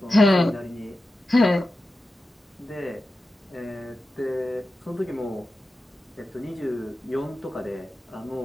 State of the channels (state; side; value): normal; both; correlation 0.92